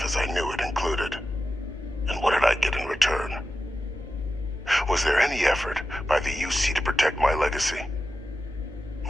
as I knew it included. And what did I get in return? Was there any effort by the UC to protect my legacy?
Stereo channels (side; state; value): both; normal; correlation 0.92